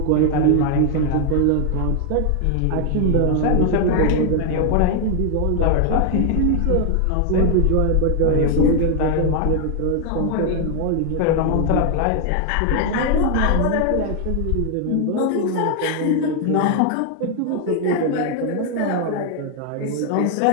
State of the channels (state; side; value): different; both; correlation 0.00